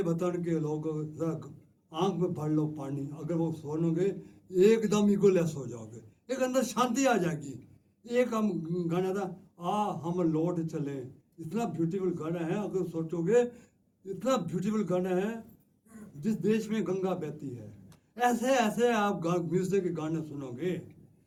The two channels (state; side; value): identical; both; correlation 1.00